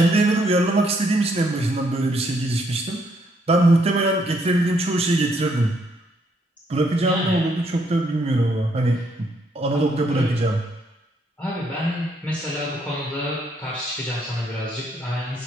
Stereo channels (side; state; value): both; normal; correlation 0.72